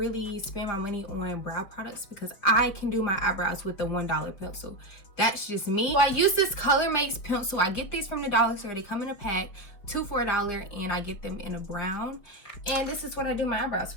spend my money on brow products because I can do my eyebrows with the $1 pencil. That's just me. So I use this Color Makes pencil. I get these from the dollar store. They come in a pack, 2 for $1, and I get them in a brown. And this is what I do my eyebrows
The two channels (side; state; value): right; late; 5.2 ms